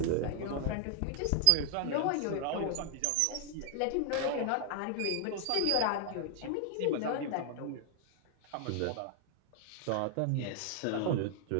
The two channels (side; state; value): both; different; correlation 0.00